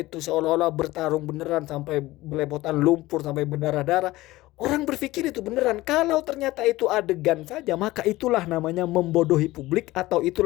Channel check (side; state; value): right; quieter; 18.1 dB